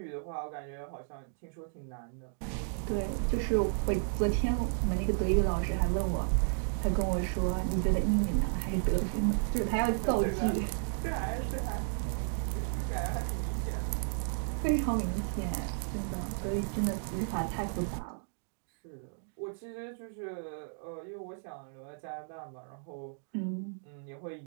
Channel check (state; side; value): silent; left; digital silence